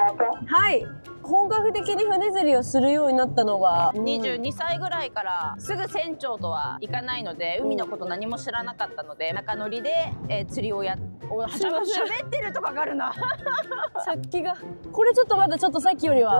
い。本格的に船釣りをするようになったのが22歳ぐらいから。すぐ船長とはいかないので、海のこと何も知らなかったので、中乗りで、釣りを喋ってるとかかるな。さっきがこれちょっとまだちょっとさっきより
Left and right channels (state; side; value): inverted; both; correlation -1.00